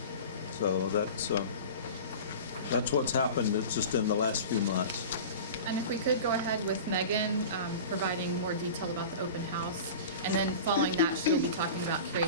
So that's what's happened. It's just in the last few months. And if we could go ahead with Megan providing more detail about the open house, and then following that, she'll be talking about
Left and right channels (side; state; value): both; inverted; correlation -0.35